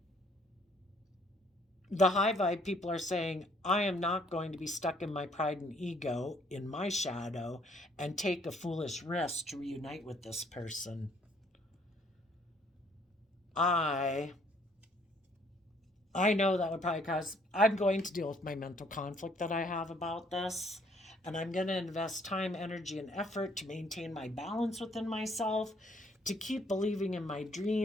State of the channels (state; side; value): normal; both; correlation 0.64